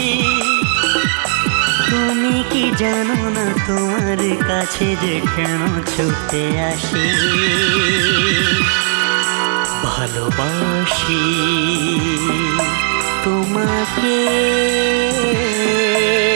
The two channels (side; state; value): left; silent; 58 dB below the other